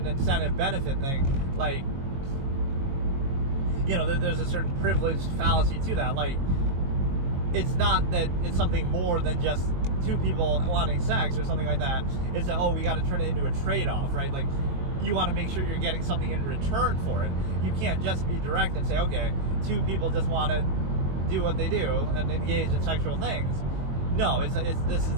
incentive benefit thing. Like, there's a certain privileged fallacy to that. Like, it's not that it's something more than just two people wanting sex or something like that. It's that, we got to turn it into a trade-off, right? Like, you want to make sure you're getting something in return for it. You can't just be direct and say, okay, two people just want to do what they do and engage in sexual things. No, this is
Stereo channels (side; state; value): left; late; 22 ms